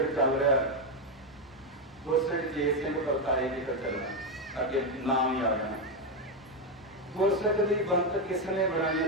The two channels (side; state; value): both; normal; correlation 0.08